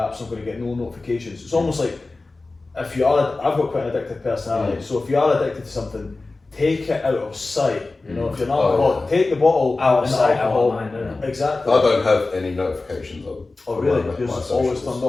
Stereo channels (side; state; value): right; quieter; 3.4 dB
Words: so I'm going to get no notifications. It's almost like, I've got quite an addictive personality, so if you are addicted to something, take it out of sight. You know, if you're not Oh, alcoholic, take the bottle Out of and the sight, out alcohol. of mind, isn't it? Exactly. I don't have any notifications on. Oh on really? my Yours is always socials. turned